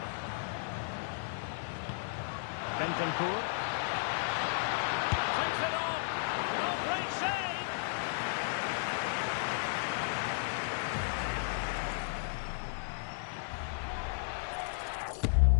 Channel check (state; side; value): silent; right; digital silence